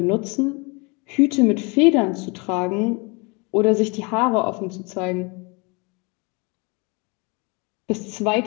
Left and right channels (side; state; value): right; quieter; 29.9 dB